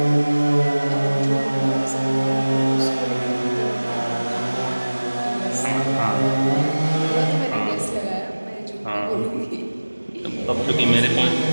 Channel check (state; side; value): inverted; both; correlation -1.00